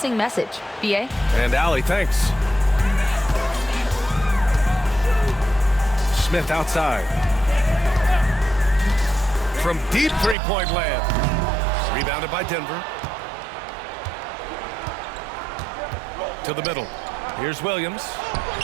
message. B.A.? And Allie, thanks. Smith outside. From deep three-point land. Rebounded by Denver. To the middle. Here's Williams.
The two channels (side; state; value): left; drops out; at 10.4 s